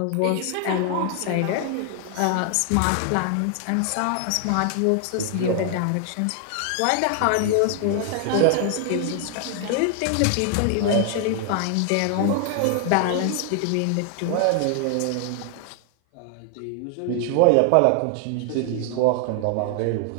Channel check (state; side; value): different; both; correlation 0.00